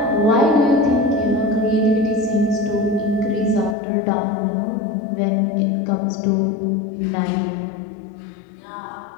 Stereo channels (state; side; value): drops out; right; at 3.8 s